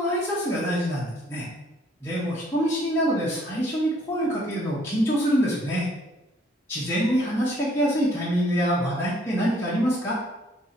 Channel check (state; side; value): normal; both; correlation 0.63